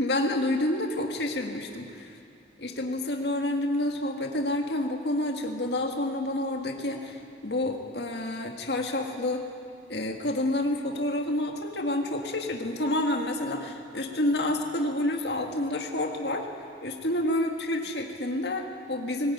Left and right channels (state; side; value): normal; both; correlation 0.32